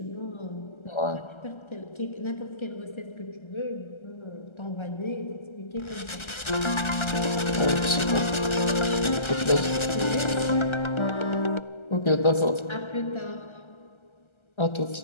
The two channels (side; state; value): right; late; 1.3 ms